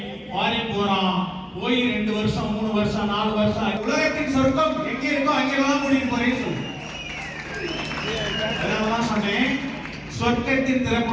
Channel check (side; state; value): both; identical; correlation 1.00